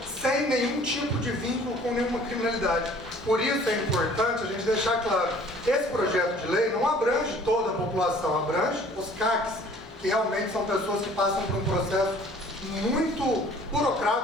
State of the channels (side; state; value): both; normal; correlation 0.52